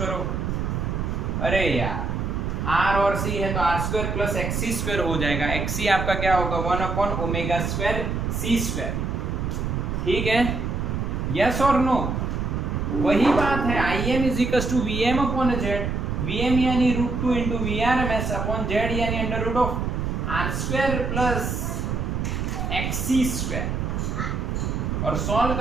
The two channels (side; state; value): right; noise; rumble, 1 dB below the sound